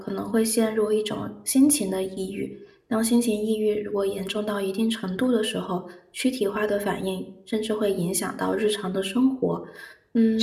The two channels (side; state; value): both; identical; correlation 1.00